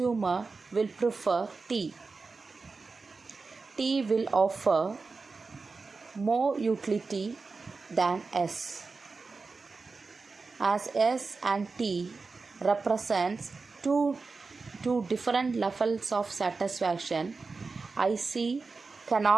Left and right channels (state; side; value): quieter; left; 4.2 dB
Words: will prefer T. T will offer more utility than S. As S and T represents two different levels of satisfaction, IC